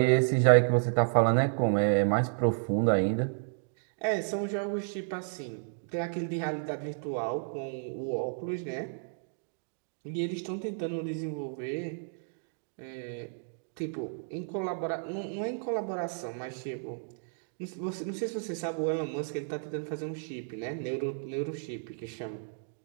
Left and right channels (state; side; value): silent; left; digital silence